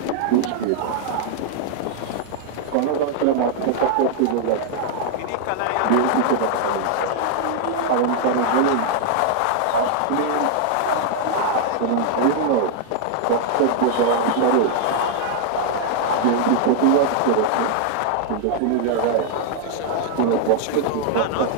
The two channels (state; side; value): different; both; correlation 0.00